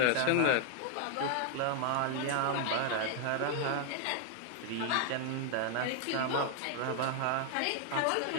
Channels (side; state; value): both; different; correlation 0.00